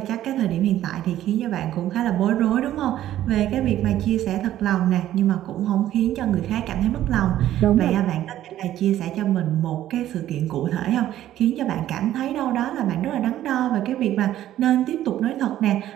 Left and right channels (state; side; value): quieter; left; 12.8 dB